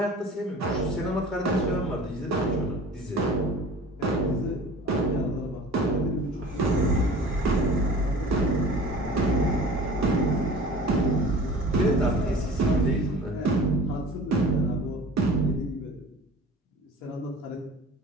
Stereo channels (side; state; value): both; normal; correlation 0.42